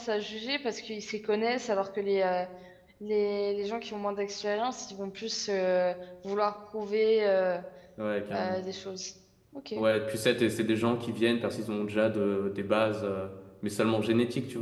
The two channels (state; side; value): identical; both; correlation 1.00